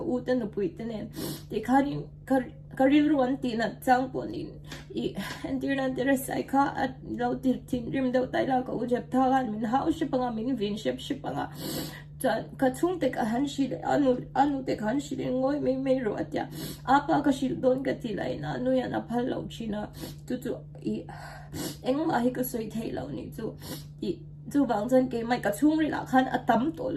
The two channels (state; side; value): identical; both; correlation 1.00